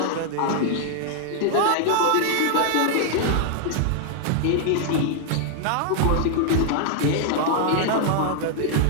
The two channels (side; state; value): both; different; correlation 0.00